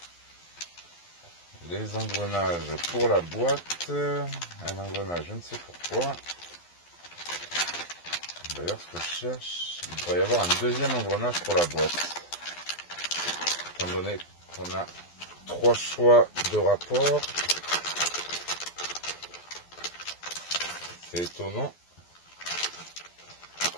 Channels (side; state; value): right; late; 12 ms